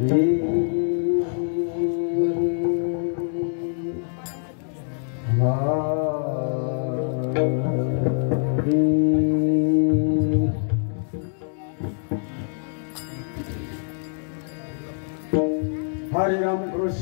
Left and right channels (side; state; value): right; silent; digital silence